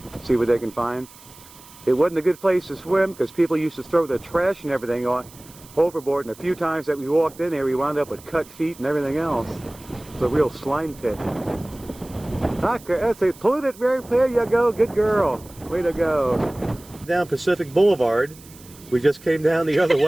see what they can find. It wasn't a good place to swim because people used to throw their trash and everything on overboard, and a few times that we walked in there, we wound up with cut feet and everything else. It's a real slime pit. That's a polluted, there you go, good girl. Way to go. Down Pacific Boulevard. We just came down the other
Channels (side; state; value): right; noise; hiss, 22 dB below the sound